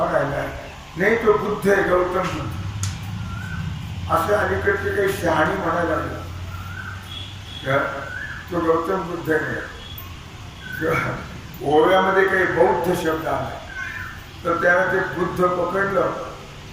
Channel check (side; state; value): both; identical; correlation 1.00